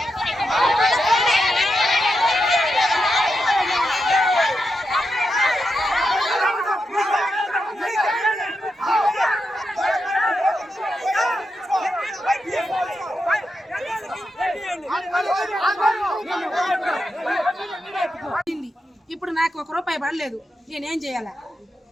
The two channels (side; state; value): both; normal; correlation 0.86